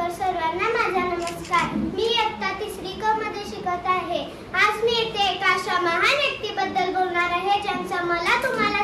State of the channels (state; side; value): identical; both; correlation 1.00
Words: सर्वांना माझा नमस्कार। मी इयत्ता 3री क मध्ये शिकत आहे। आज मी येथे एका अशा महान व्यक्तीबद्दल बोलणार आहे ज्यांचा मला